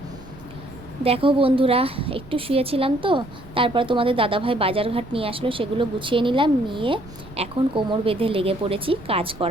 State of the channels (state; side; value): noise; right; rumble, 19 dB below the sound